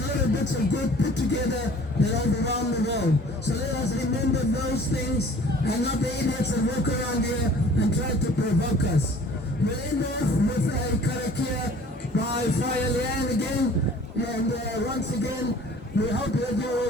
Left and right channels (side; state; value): both; normal; correlation 0.50